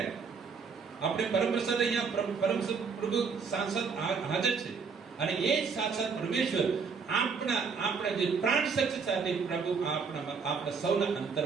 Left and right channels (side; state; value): left; quieter; 5.5 dB